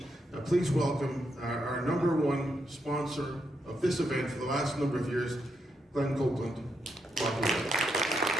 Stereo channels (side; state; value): both; normal; correlation 0.81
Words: please welcome our number one sponsor of this event for the last number of years, Glenn Copeland. Welcome.